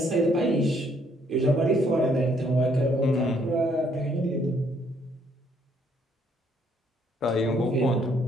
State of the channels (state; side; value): normal; both; correlation 0.67